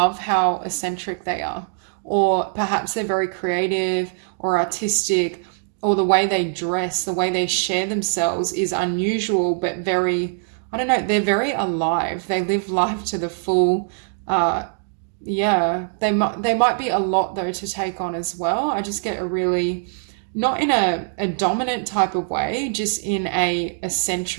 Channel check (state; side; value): silent; left; digital silence